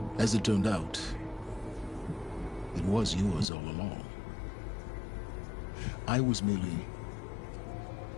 As it turned out, it was yours all along. I was merely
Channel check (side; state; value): right; drops out; at 3.5 s